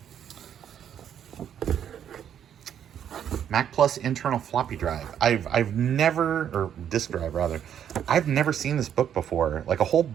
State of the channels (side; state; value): left; quieter; 9.3 dB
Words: Mac Plus internal floppy drive. I've never, or disk drive rather, I've never seen this book before. Like a whole